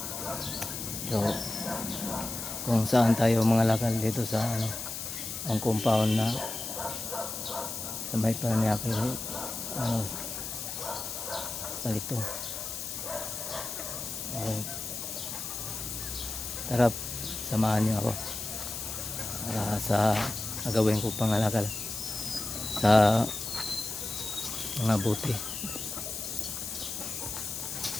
So kung saan tayo mangalakal dito sa ang compound na sa may Paranaque palito. Tara, samahan niyo ako para sa gagawin ko pangalakal sa mga buti.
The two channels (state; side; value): noise; left; hiss, 6 dB below the sound